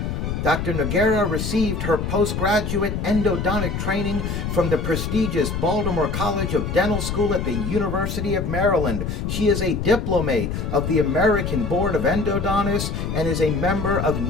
Dr. Noguera received her postgraduate endodontic training from the prestigious Baltimore College of Dental School at the University of Maryland. She is a diplomate of the American Board of Endodontists and is a member of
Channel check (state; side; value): noise; left; rumble, 3 dB below the sound